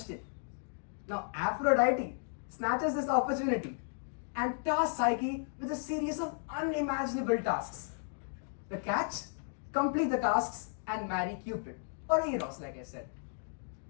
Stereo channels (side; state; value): right; silent; digital silence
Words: Now Aphrodite snatches this opportunity and tasks Psyche with a series of unimaginable tasks. The catch? Complete the tasks and marry Cupid, or Eros, like I said.